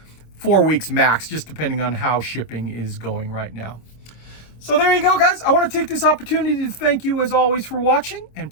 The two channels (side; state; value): right; late; 26 ms